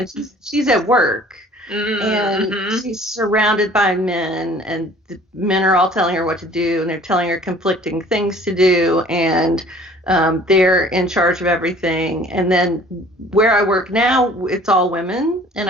And she's at work and Mm-hmm. she's surrounded by men, and the men are all telling her what to do, and they're telling her conflicting things to do, and they're in charge of everything. And then where I work now, it's all women, and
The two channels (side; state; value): both; normal; correlation 0.51